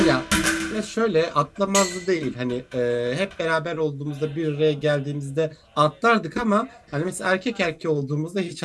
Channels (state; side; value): identical; both; correlation 1.00